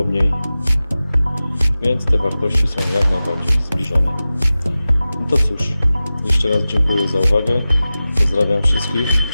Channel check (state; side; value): inverted; both; correlation -0.96